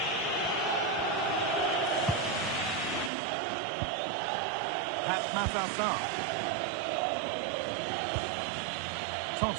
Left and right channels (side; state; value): left; drops out; at 3.1 s